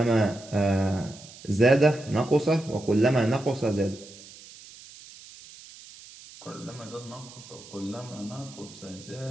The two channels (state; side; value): noise; right; hiss, 19 dB below the sound